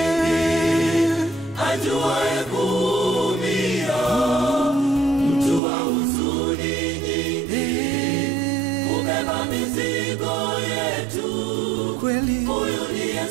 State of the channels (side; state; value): left; drops out; at 5.6 s